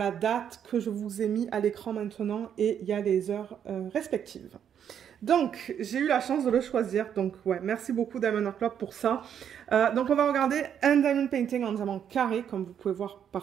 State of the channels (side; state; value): left; quieter; 8.8 dB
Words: date que je vous ai mis à l'écran maintenant et il y a les heures respectives. Donc, j'ai eu la chance de le choisir. Donc, ouais, merci beaucoup Diamond Art Club pour ça. Donc, on va regarder un diamond painting en diamant carré, comme vous pouvez voir